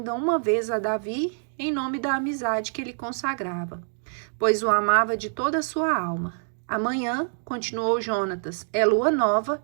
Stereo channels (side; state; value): left; silent; 56 dB below the other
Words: uma vez a Davi em nome da amizade que ele consagrava, pois o amava de toda a sua alma. Amanhã, continuou Jonatas, é lua nova